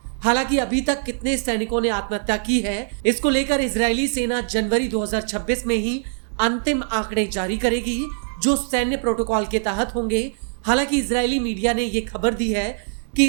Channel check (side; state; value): left; silent; digital silence